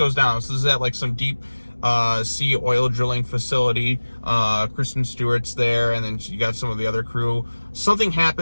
down. So this is at like some deep sea oil drilling facility. Kristen Stewart's there, and then you got some of the other crew. Something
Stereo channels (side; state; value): both; inverted; correlation -1.00